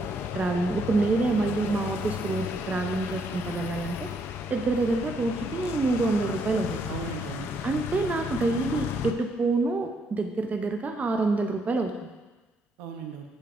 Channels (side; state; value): both; normal; correlation 0.73